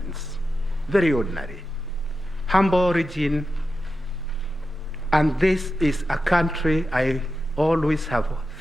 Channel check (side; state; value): both; normal; correlation 0.91